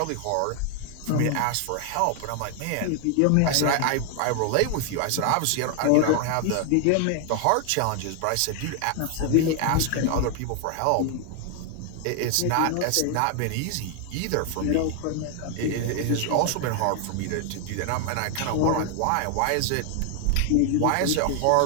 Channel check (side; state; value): both; different; correlation 0.00